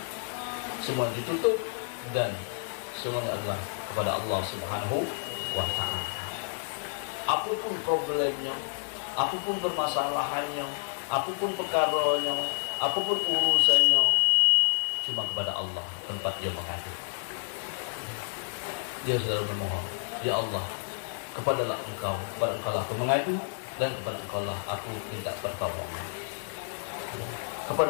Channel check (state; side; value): silent; right; 58 dB below the other